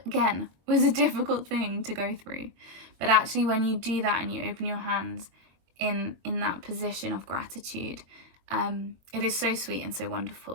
again, was a difficult thing to go through. But actually, when you do that and you open your hands in that position of gratitude, it is so sweet and so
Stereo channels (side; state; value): left; late; 22 ms